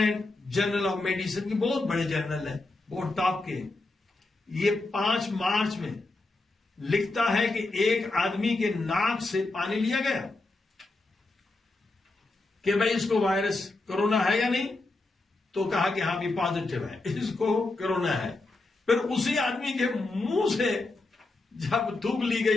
journal of medicine کی بہت بڑے جرنل ہے، بہت ٹاپ کے، یہ 5 مارچ میں لکھتا ہے کہ ایک آدمی کے ناک سے پانی لیا گیا کہ بھائی اس کو وائرس کرونا ہے یا نہیں، تو کہا کہ ہاں بھی پازیٹو ہے، اس کو کرونا ہے. پھر اسی آدمی کے منہ سے جب تھوک لی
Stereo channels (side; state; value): right; quieter; 3.1 dB